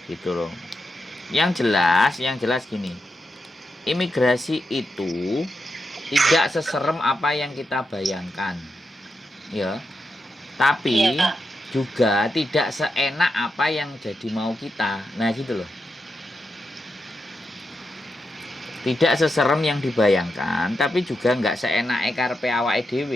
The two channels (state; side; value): normal; both; correlation 0.86